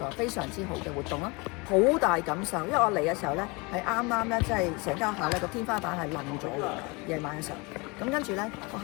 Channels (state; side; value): quieter; right; 27.4 dB